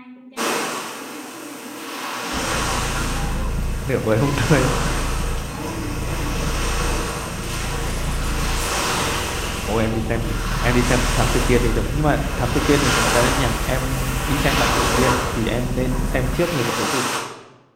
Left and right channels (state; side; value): identical; both; correlation 1.00